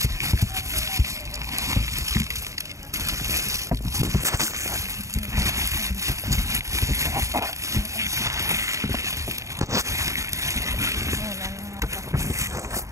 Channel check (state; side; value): late; left; 0.15 ms